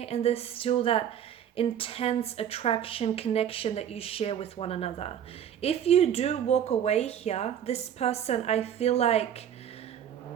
and there's still that intense attraction, connection that you share with one another. If you do walk away here, this person, I feel like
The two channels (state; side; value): quieter; left; 9.5 dB